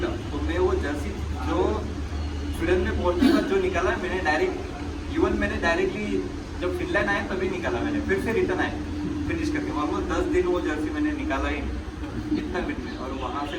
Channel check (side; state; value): both; identical; correlation 1.00